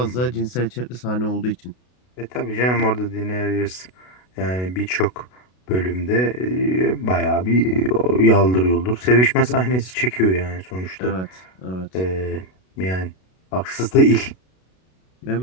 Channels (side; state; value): right; late; 32 ms